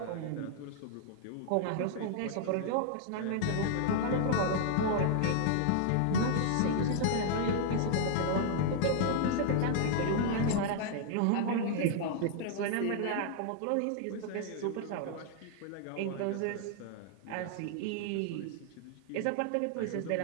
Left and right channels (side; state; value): both; different; correlation 0.00